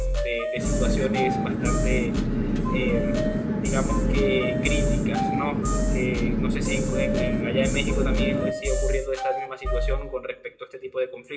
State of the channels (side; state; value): both; identical; correlation 1.00